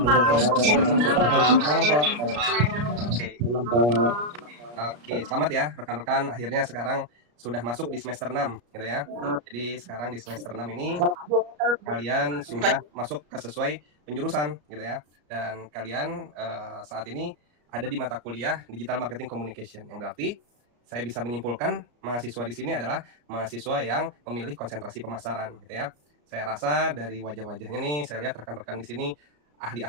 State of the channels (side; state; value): left; late; 33 ms